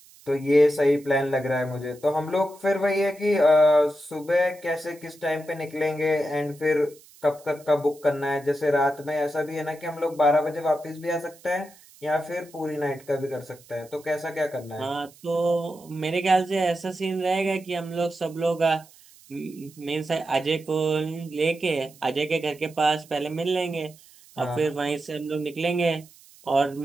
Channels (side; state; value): right; noise; hiss, 25 dB below the sound